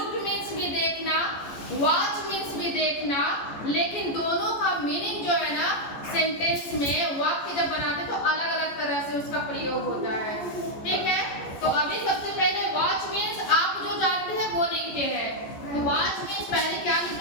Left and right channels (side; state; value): right; late; 14 ms